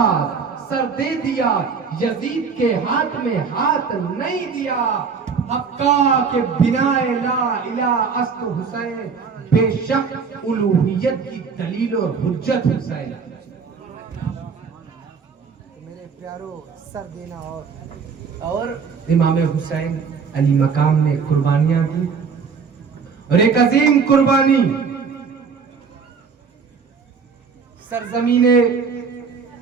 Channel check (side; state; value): left; quieter; 5.6 dB